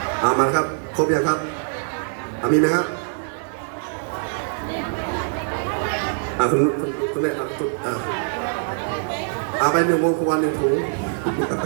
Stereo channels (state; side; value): silent; left; 63 dB below the other